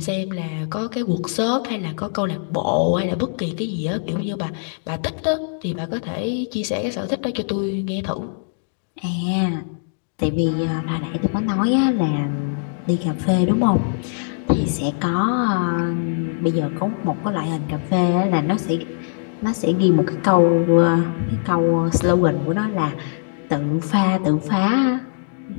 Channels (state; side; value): silent; right; digital silence